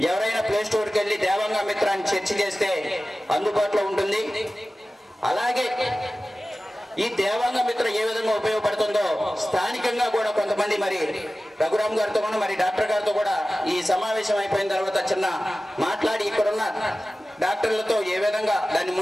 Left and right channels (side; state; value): both; normal; correlation 0.96